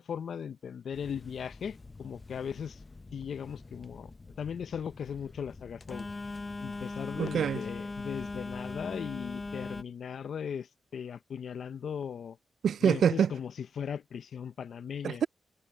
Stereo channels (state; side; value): normal; both; correlation 0.74